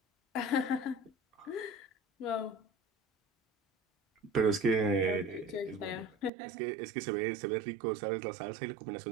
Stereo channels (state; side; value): drops out; left; at 6.3 s